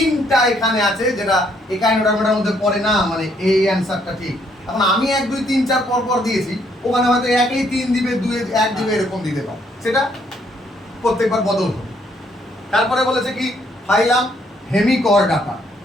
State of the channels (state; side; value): normal; both; correlation 0.69